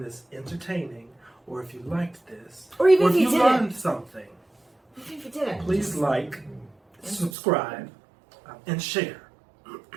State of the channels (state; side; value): drops out; left; at 7.4 s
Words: this entertaining, or if you liked this, Or even or if if you you didn't. learned something, Even if you didn't. please like, subscribe, and share.